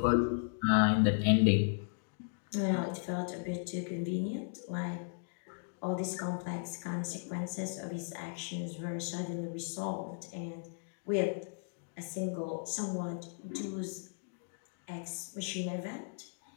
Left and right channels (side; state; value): right; silent; digital silence